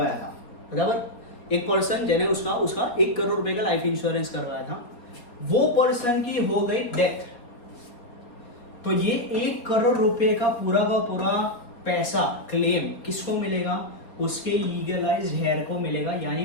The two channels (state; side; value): late; right; 4.1 ms